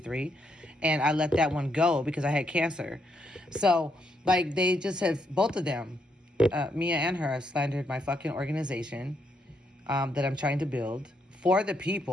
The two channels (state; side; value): normal; both; correlation 0.77